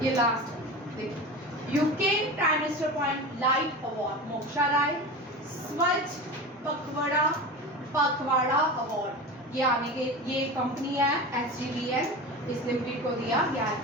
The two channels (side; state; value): both; normal; correlation 0.29